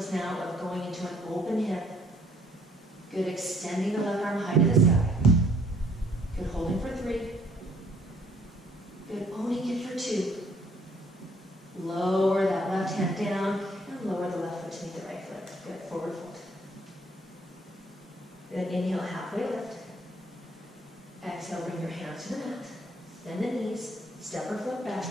now of going into an open hip. Good, extending the left arm high to the sky. Good, holding for 3. Good, owning it for 2. Lower that left hand down and lower the left foot to meet the right foot. Good, forward fold. Good, inhale, halfway lift. Exhale, bring your hands to the mat. Bend the knees, step or flip back,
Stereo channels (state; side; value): normal; both; correlation 0.63